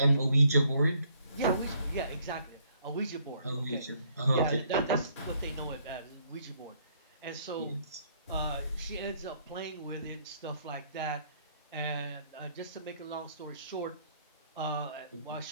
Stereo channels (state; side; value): inverted; both; correlation -0.67